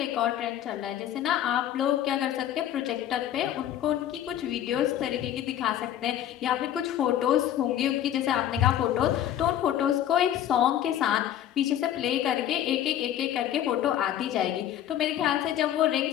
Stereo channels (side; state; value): right; quieter; 11.3 dB